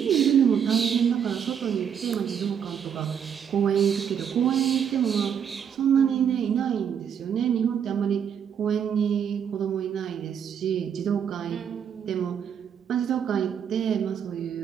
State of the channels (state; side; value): quieter; left; 8.0 dB